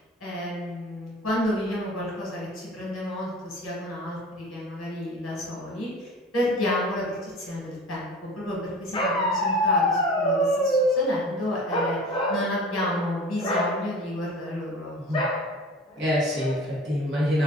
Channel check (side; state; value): both; normal; correlation 0.40